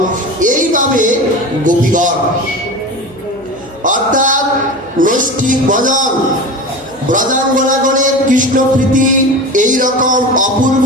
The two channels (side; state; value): right; noise; hum, 26 dB below the sound